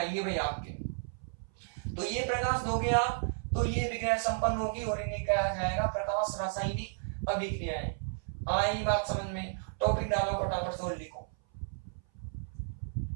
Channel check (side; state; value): left; silent; 56 dB below the other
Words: भाई आपके। तो ये प्रकाश दोगे आप तो ये अभिक्रिया संपन्न होगी और इन्हें कहा जाएगा प्रकाश रासायनिक अभिक्रियाएं। आई बात समझ में? टॉपिक डालो, फटाफट से लिखो।